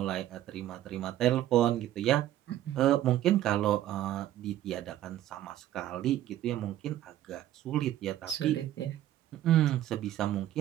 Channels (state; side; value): quieter; left; 12.9 dB